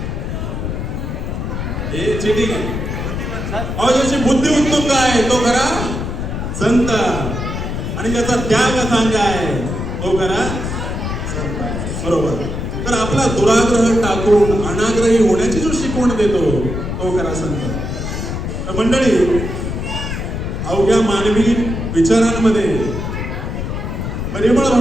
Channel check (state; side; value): noise; left; rumble, 4 dB below the sound